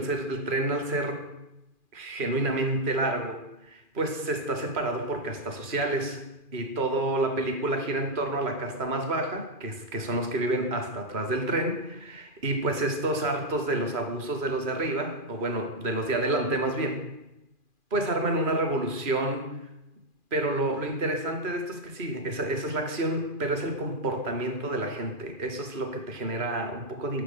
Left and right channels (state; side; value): late; left; 2.4 ms